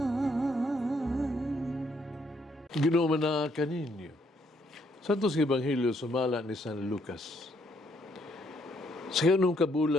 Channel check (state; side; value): normal; both; correlation 0.71